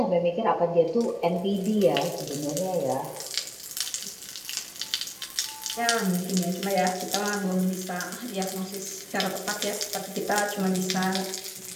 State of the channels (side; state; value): both; identical; correlation 1.00